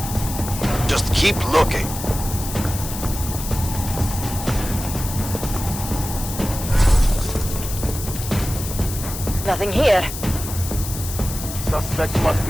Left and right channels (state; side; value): noise; left; hiss, 8 dB below the sound